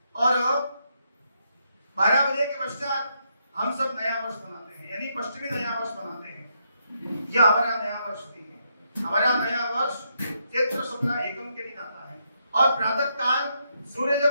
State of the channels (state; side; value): inverted; both; correlation -0.79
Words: और 12 बजे के पश्चात हम सब नया वर्ष मनाते हैं, यानी पश्चिमी नया वर्ष मनाते हैं। यह हमारा नया वर्ष भी है। हमारा नया वर्ष चैत्र शुक्ल एकम के दिन आता है और प्रातः काल